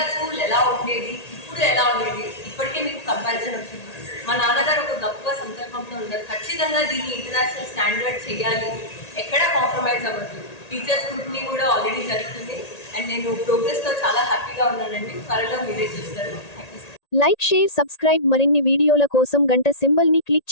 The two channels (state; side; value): late; right; 1.8 ms